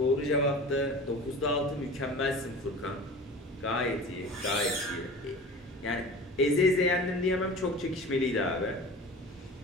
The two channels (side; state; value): both; normal; correlation 0.37